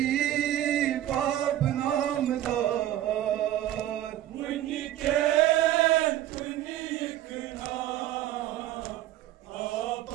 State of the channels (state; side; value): quieter; left; 13.0 dB